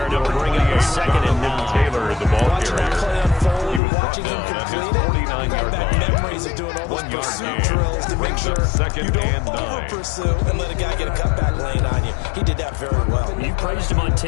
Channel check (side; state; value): right; drops out; at 3.8 s